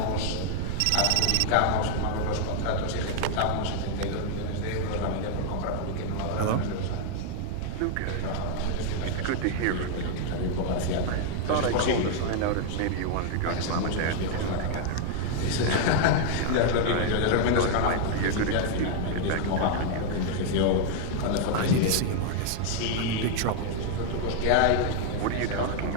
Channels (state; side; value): different; both; correlation 0.00